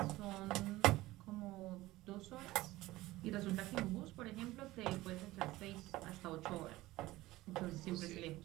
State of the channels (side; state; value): left; quieter; 17.9 dB